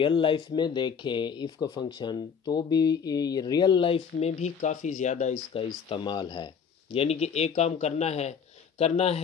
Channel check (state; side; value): quieter; right; 6.7 dB